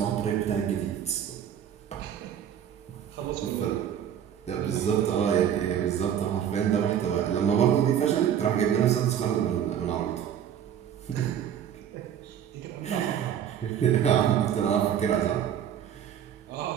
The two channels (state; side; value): quieter; left; 9.4 dB